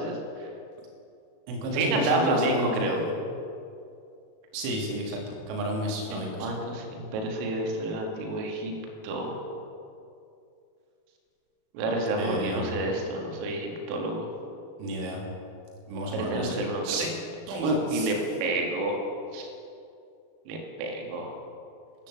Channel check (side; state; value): left; late; 37 ms